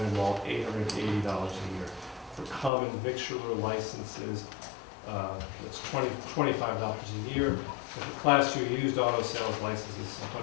malt, $880 a year. For common victualler licenses, it's $25 a year. And for Class 2 used auto sales licenses,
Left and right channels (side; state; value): right; drops out; at 2.7 s